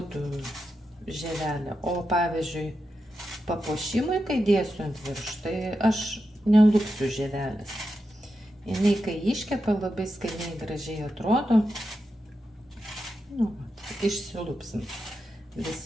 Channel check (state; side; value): normal; both; correlation 0.88